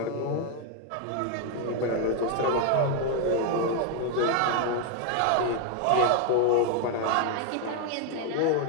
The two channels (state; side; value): different; both; correlation 0.01